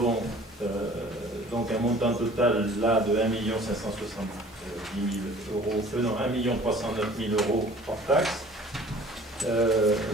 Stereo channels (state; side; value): normal; both; correlation 0.49